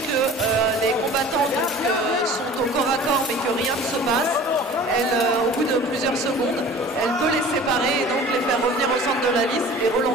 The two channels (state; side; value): normal; both; correlation 0.43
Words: que les combattants sont au corps à corps mais que rien ne se passe, elle, au bout de plusieurs secondes, elle peut les séparer et donc les faire revenir au centre de la liste et